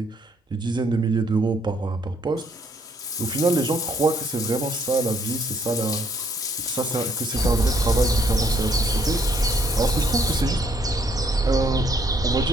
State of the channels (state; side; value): normal; both; correlation 0.68